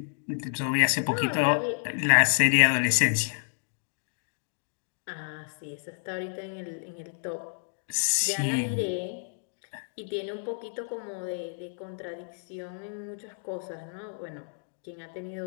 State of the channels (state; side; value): silent; right; digital silence